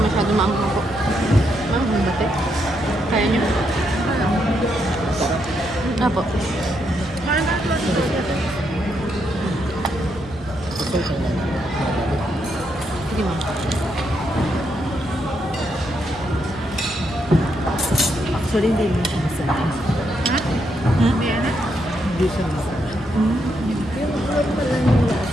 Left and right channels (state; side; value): normal; both; correlation 0.79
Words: maanghang po. Ma'am, ang bate. Kaya nyo. Apo. Sige ma'am. Actually, hindi mo siya masarap. Hindi na. Hindi siya masarap. Yung normal lang yung